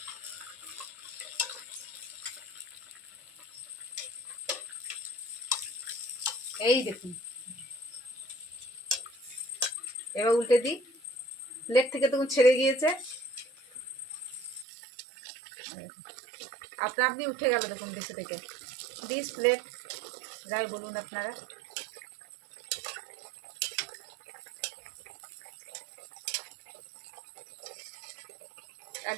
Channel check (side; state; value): left; drops out; at 14.7 s